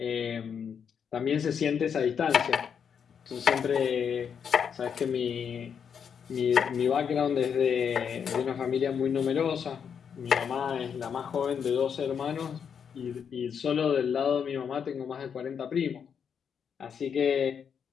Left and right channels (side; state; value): right; quieter; 7.3 dB